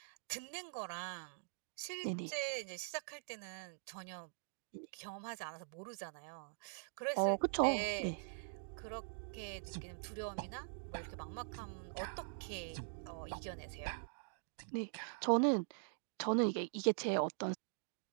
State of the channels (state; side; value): silent; left; digital silence